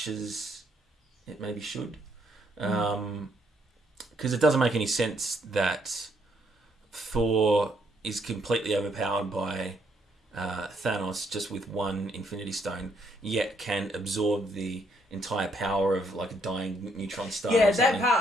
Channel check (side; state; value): both; normal; correlation 0.72